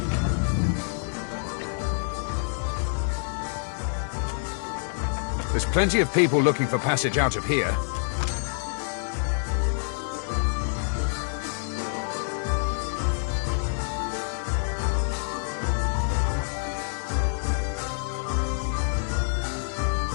There's plenty of people looking for passage out of here.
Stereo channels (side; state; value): right; silent; digital silence